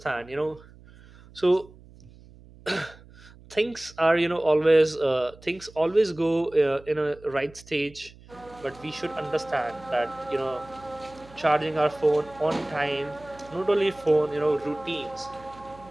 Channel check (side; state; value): right; noise; hum, 23 dB below the sound